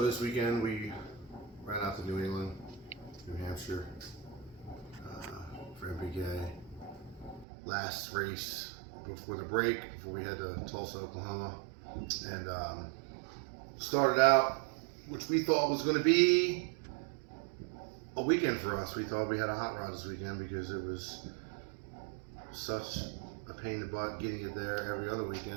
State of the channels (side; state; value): left; drops out; at 7.5 s